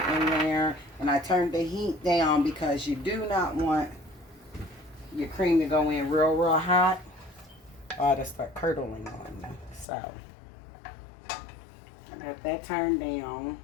in there. And I turned the heat down because you do not want your cream to go in real, real hot, or it'll start curdling on you. So I got that turned down.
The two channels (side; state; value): right; drops out; at 9.9 s